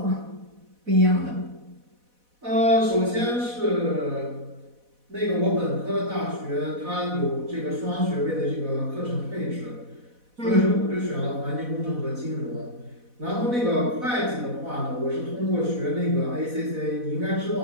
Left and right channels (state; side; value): late; left; 4.1 ms